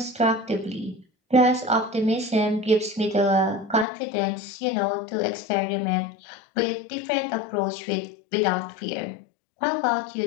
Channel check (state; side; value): drops out; right; at 3.9 s